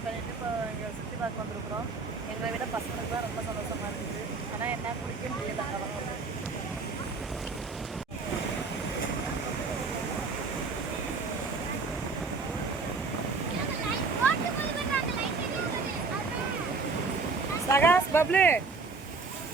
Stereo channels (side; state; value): left; quieter; 4.2 dB